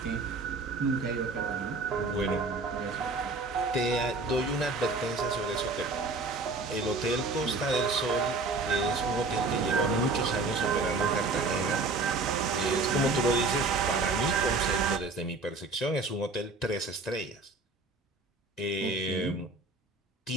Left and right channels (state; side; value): quieter; left; 3.5 dB